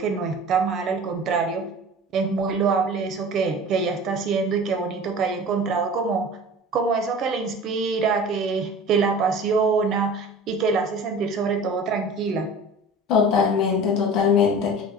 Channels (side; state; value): both; normal; correlation 0.39